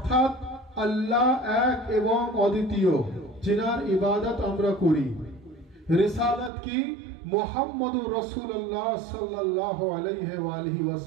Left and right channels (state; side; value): drops out; left; at 6.5 s